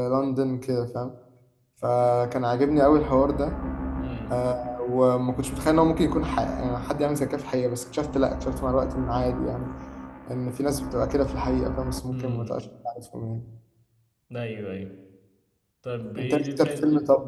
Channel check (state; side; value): identical; both; correlation 1.00